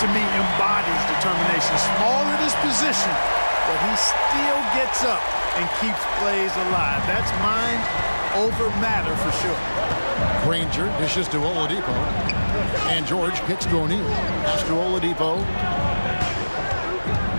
me, embodies determination. Small at his position, but he still gets up and keeps plays alive. That's mind over matter for sure. Granger dishes to Oladipo. And George kicks to O'Neal. Pass to Oladipo.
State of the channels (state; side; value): inverted; both; correlation -1.00